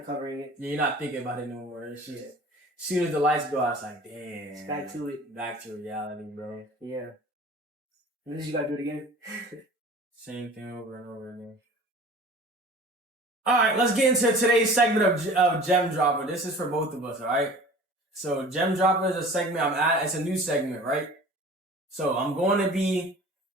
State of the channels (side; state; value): both; normal; correlation 0.43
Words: covering it. You're not thinking about it no more. It's just, as soon as the lights go out, it's like, damn. It's back to it. Back to reality, bro. Yeah. And then you gotta do it again. Same thing over and over again. Alright, let's get into today's segment of Gem Dropper. This is for both of us, alright? So, Gem Dropper is a segment it's a new segment, right? So, I'm going to be